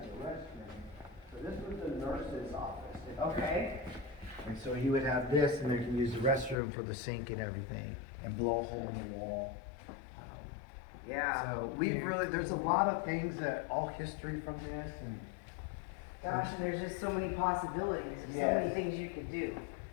a restroom. So this was the nurse's office. Okay. And so he would have this, and they can use the restroom for the sink and everything, and blow a hole in the wall. Yeah. So we've really, there's a lot of things that, all history from this, and Gosh, and there's just so many possibilities, so Yes. many things you could do.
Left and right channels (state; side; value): drops out; right; at 6.6 s